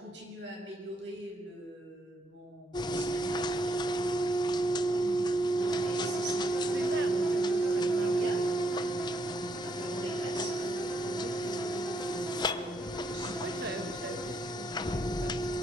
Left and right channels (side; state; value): both; normal; correlation 0.75